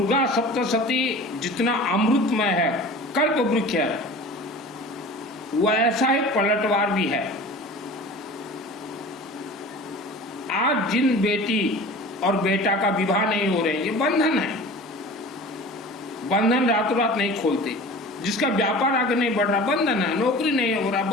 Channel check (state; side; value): normal; both; correlation 0.39